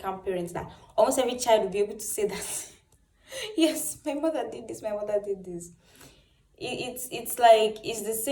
parents that almost every child will be able to say that, yes, my mother did this, my mother did this. It's like it's the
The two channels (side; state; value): both; identical; correlation 1.00